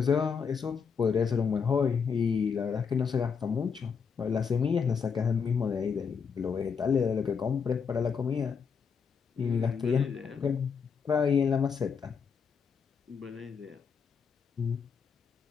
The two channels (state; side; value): quieter; right; 6.2 dB